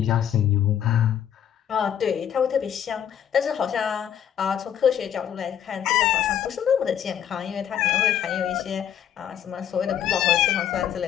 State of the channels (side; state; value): right; quieter; 9.6 dB